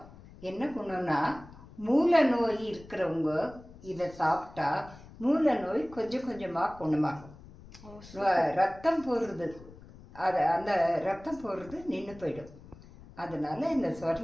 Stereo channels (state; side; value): noise; left; rumble, 19 dB below the sound